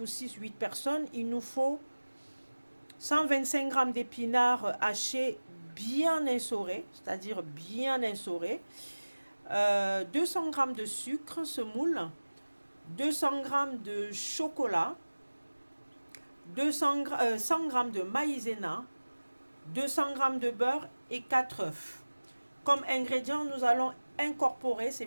6-8 personnes, il nous faut 125 g d'épinards hachés bien essorés, c'est-à-dire bien essorés, 200 g de sucre semoule, 200 g de chocolat, 100 g de maïzena, 200 g de beurre et 4 œufs. Comme ingrédients, nous allons incorporer, c'est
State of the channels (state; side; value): inverted; both; correlation -1.00